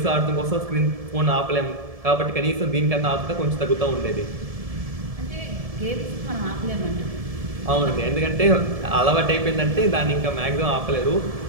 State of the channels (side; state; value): left; late; 1.7 ms